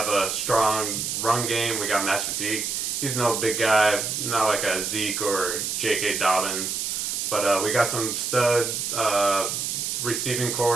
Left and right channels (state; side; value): noise; right; hiss, 2 dB below the sound